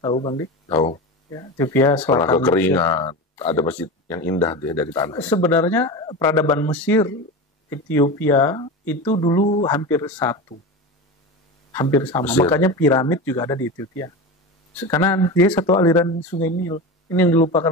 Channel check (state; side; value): normal; both; correlation 0.25